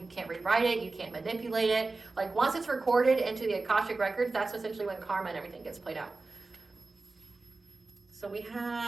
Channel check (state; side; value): quieter; left; 3.6 dB